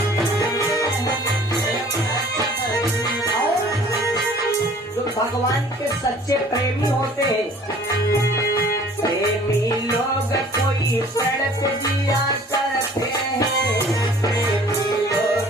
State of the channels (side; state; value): both; normal; correlation 0.51